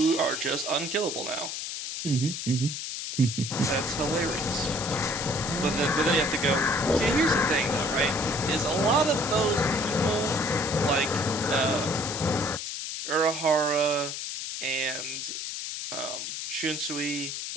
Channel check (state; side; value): noise; left; hiss, 5 dB below the sound